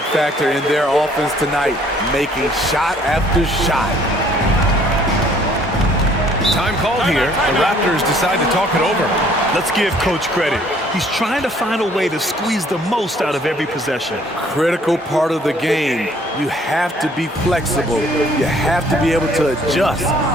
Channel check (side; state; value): both; normal; correlation 0.60